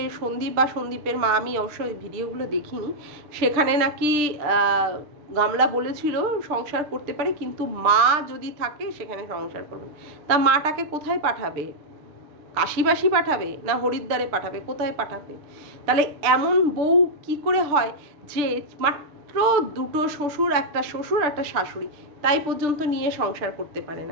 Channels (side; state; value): left; late; 6.8 ms